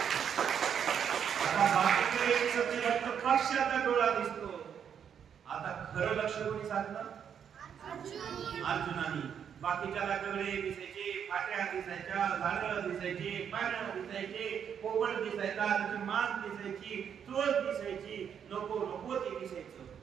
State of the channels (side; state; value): left; quieter; 8.1 dB